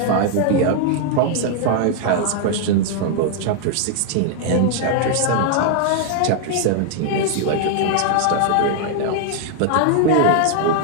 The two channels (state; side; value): different; both; correlation 0.00